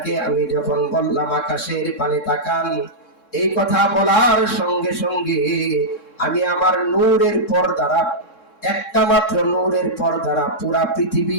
আমি যখন বললাম আকাশের পানে তাকান, এই কথা বলার সঙ্গে সঙ্গে আমি আমার নূরের পর্দারা, একটা মাত্র নূরের পর্দারা পুরা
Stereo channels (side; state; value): right; late; 3.7 ms